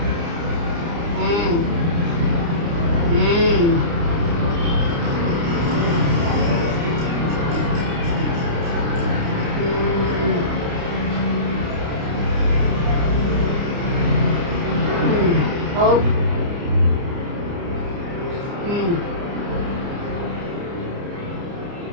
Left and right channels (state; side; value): late; left; 30 ms